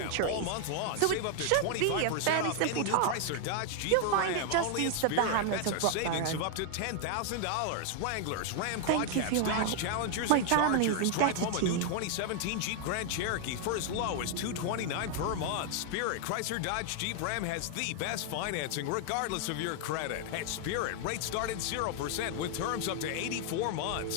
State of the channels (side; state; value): both; different; correlation 0.00